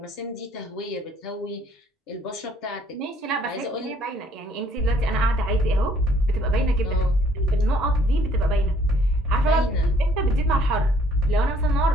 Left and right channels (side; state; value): both; normal; correlation 0.62